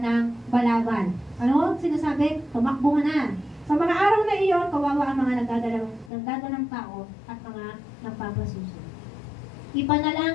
ng balabal. Ano? Sinasabi, tumakbo na. Sa mga araw na iyon, kawawa ang mga nagdadalang tao at mga nagpapasuso.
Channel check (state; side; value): drops out; right; at 6.1 s